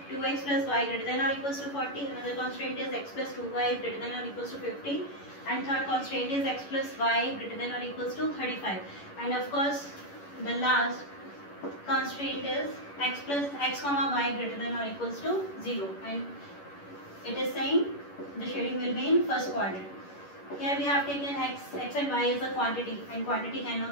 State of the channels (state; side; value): late; right; 11 ms